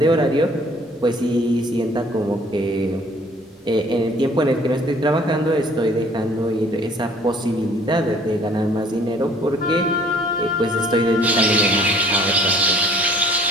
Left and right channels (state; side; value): normal; both; correlation 0.55